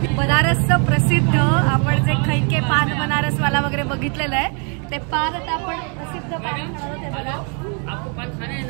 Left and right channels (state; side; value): quieter; left; 38.2 dB